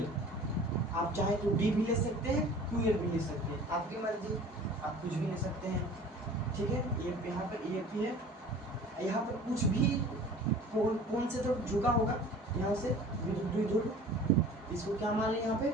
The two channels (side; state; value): both; normal; correlation 0.44